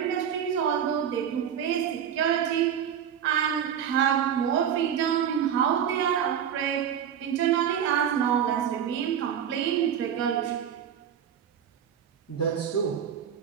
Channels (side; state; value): left; quieter; 8.9 dB